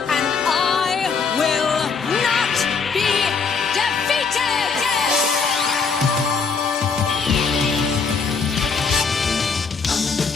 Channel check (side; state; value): right; quieter; 5.3 dB